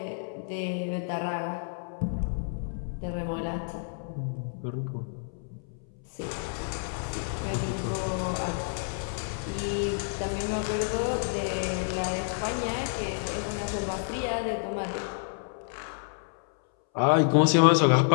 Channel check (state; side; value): silent; right; 58 dB below the other